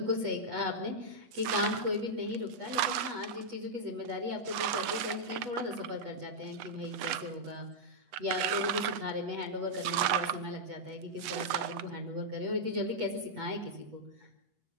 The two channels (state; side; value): late; left; 8.2 ms